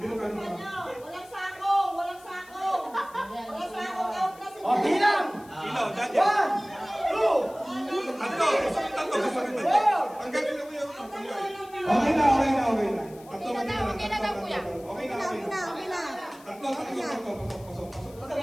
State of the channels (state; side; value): noise; left; hiss, 24 dB below the sound